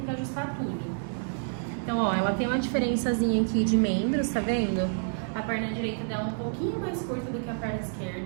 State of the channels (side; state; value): left; silent; digital silence